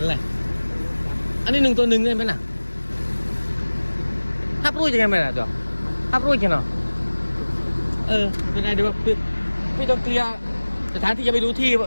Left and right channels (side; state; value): both; inverted; correlation -1.00